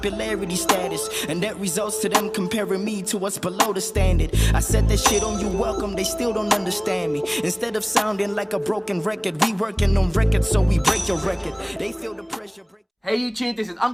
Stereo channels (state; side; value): identical; both; correlation 1.00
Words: status, and that results to them comparing me to what's below the standard. I said that shit on you welcome, they still don't understand me. Instead of sounding like a broken record, we working on records so we break your record. They feel the pressure break. Hey YouTube, this is